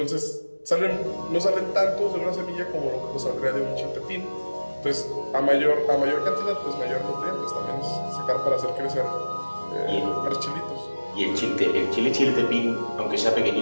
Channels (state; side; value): inverted; both; correlation -1.00